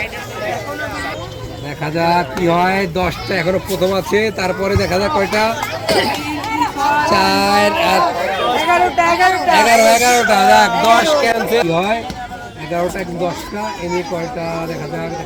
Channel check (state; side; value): identical; both; correlation 1.00